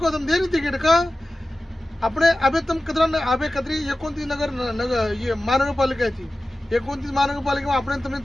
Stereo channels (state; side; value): normal; both; correlation 0.95